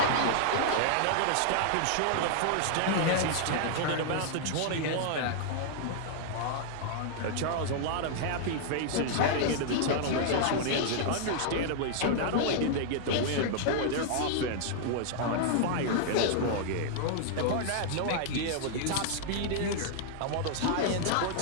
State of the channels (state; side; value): different; both; correlation -0.01